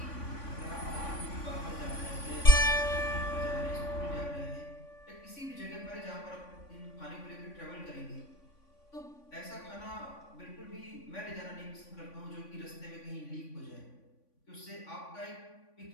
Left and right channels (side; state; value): right; late; 3.5 ms